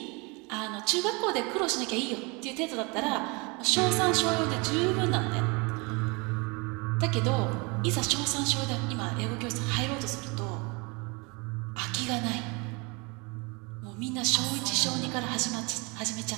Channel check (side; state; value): left; quieter; 28.7 dB